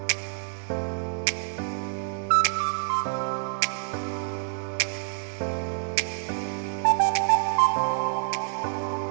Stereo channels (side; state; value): left; silent; digital silence